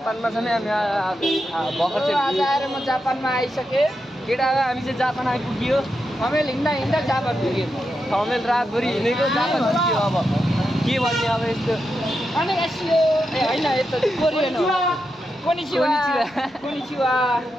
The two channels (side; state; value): both; normal; correlation 0.86